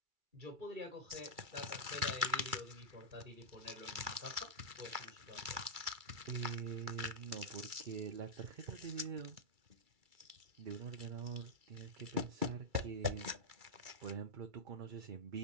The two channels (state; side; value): late; left; 2.3 ms